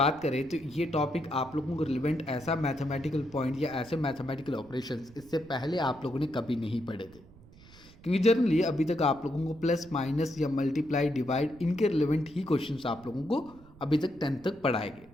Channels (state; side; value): noise; right; rumble, 22 dB below the sound